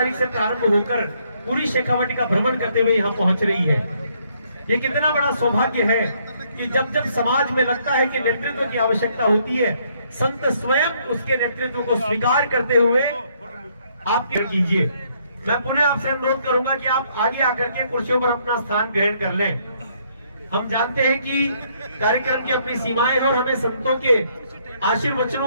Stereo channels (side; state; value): both; inverted; correlation -0.69